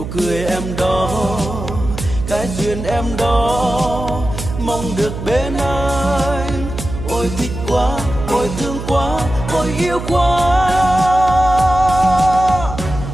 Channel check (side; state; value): right; noise; hum, 8 dB below the sound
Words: cười em đó, cái duyên em đó, mong được bên anh. Ôi thích quá, ôi thương quá, ôi yêu quá.